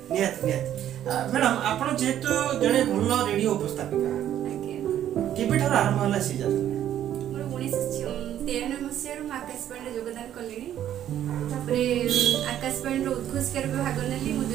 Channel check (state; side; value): quieter; left; 11.1 dB